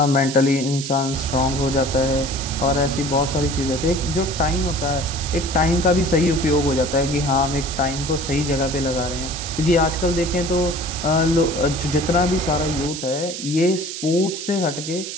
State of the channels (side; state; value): right; noise; hiss, 8 dB below the sound